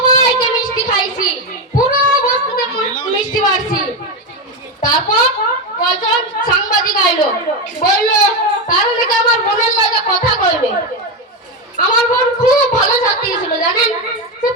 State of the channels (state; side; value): normal; both; correlation 0.12